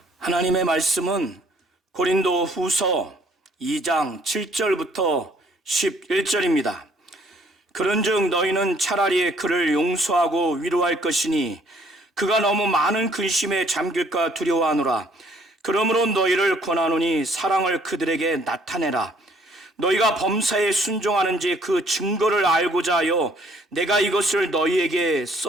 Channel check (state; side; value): normal; both; correlation 0.62